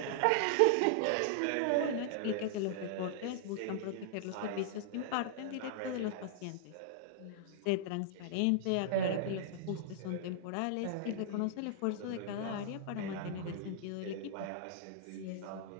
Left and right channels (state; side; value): different; both; correlation -0.01